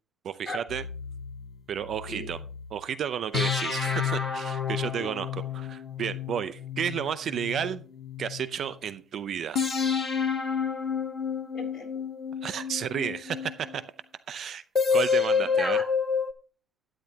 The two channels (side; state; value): both; normal; correlation 0.52